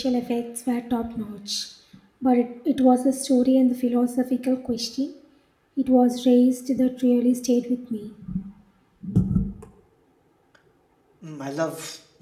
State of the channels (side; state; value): both; identical; correlation 1.00